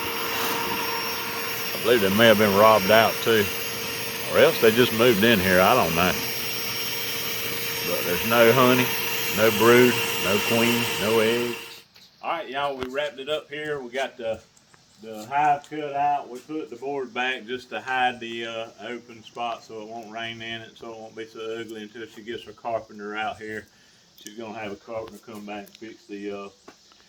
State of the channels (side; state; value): both; identical; correlation 1.00